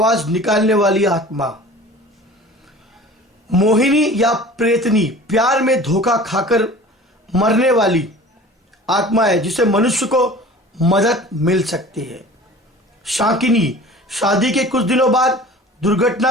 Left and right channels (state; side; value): normal; both; correlation 0.42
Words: निकालने वाली आत्मा। मोहिनी या प्रेतनी, प्यार में धोखा खाकर मरने वाली आत्मा है जिसे मनुष्य को मदद मिल सकती है। शाकिनी, शादी के कुछ दिनों बाद